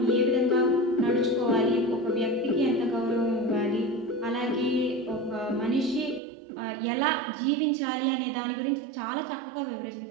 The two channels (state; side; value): drops out; left; at 6.2 s